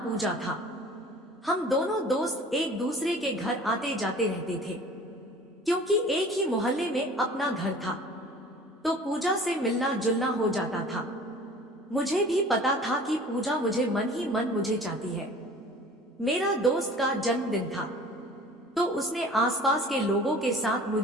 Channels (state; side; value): normal; both; correlation 0.46